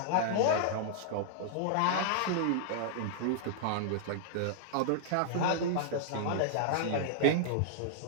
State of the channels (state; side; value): different; both; correlation -0.01